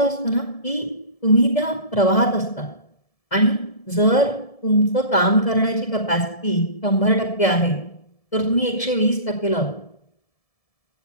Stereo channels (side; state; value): right; late; 1.7 ms